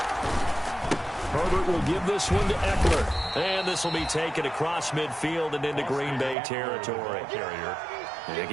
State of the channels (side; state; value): left; drops out; at 6.4 s